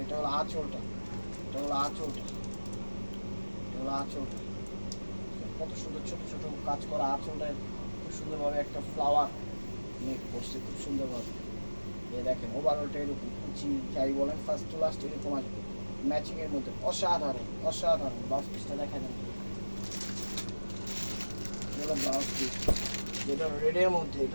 এটা হলো আঁচলটা, এটা হলো আঁচলটা, এটা হলো আঁচলটা, কত সুন্দর ছোট ছোট কাজ করা আঁচলটায় খুব সুন্দরভাবে একটা ফ্লাওয়ার মেক করছে খুব সুন্দরভাবে। এই দেখেন ওভারঅলটা এরকম কুচি যাই বলেন ফার্স্ট টু লাস্ট এরকম আসবে ম্যাচিং এর মধ্যে, অসাধারণ অসাধারণ। ব্লাউজ পিসটা দেখা যাবে, এটা ব্লাউজ পিস, যেটা রেডের মধ্যে,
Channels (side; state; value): both; inverted; correlation -1.00